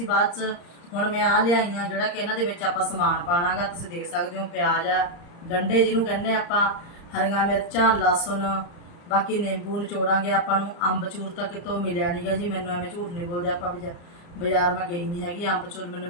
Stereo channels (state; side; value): late; right; 34 ms